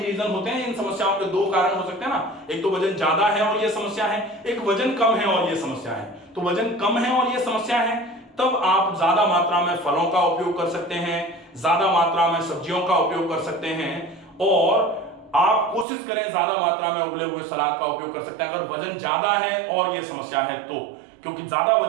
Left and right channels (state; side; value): drops out; left; at 15.9 s